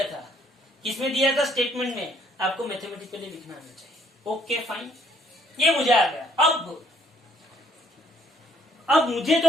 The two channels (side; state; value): both; normal; correlation 0.64